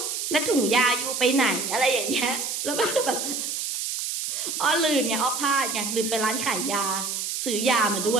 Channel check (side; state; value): right; noise; hiss, 3 dB below the sound